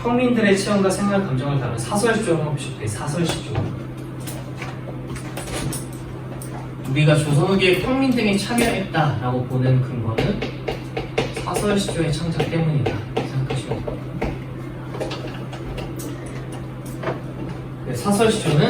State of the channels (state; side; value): identical; both; correlation 1.00